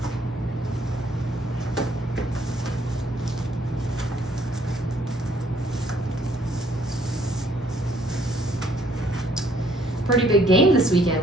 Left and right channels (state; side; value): normal; both; correlation 0.65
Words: Pretty big game this weekend